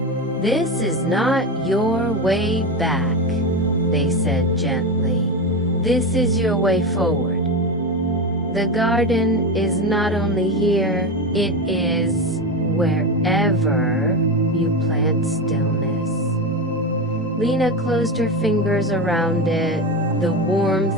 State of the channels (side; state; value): both; normal; correlation 0.19